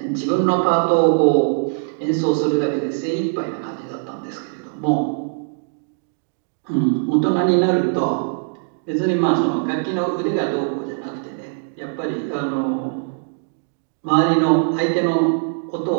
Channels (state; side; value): silent; left; digital silence